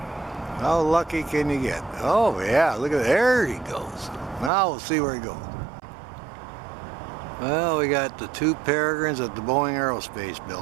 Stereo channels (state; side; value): drops out; left; at 4.5 s